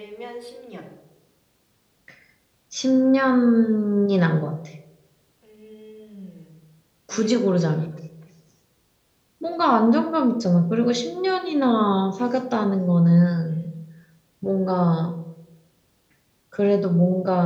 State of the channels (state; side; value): identical; both; correlation 1.00